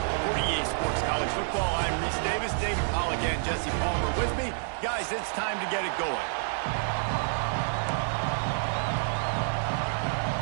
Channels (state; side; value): silent; left; digital silence